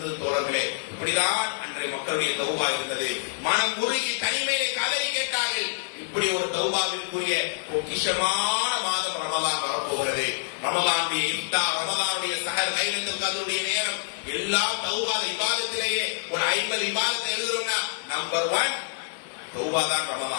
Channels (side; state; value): right; silent; digital silence